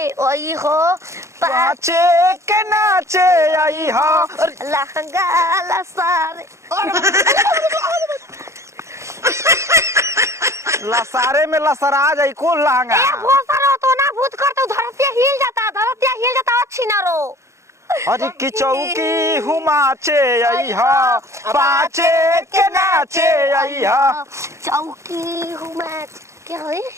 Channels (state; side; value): late; left; 0.14 ms